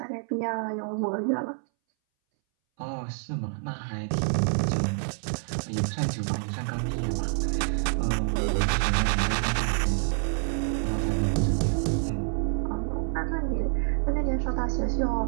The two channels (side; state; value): left; silent; 60 dB below the other